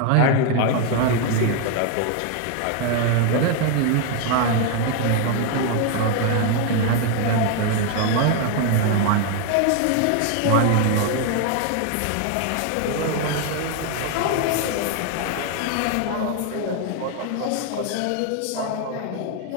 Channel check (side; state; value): both; different; correlation 0.01